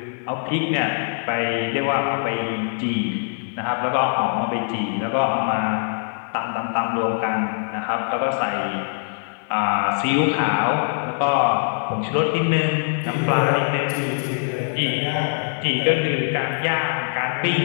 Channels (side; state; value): right; silent; digital silence